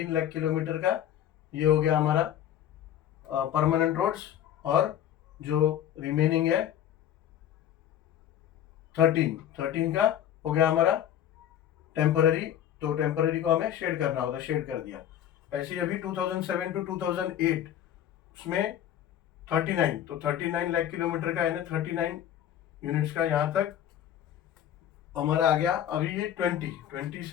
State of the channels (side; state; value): right; quieter; 10.7 dB